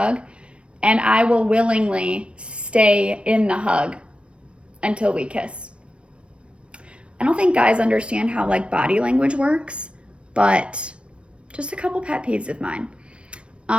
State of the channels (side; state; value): left; late; 0.059 ms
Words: and I will willingly stay in the hug until we kiss. I don't think guys understand how body language works, but just a couple pet peeves of mine.